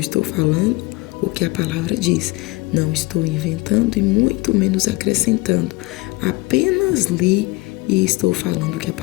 falando o que a palavra diz. Não estou inventando e muito menos acrescentando. Apenas li e estou falando o que a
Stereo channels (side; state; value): right; quieter; 23.2 dB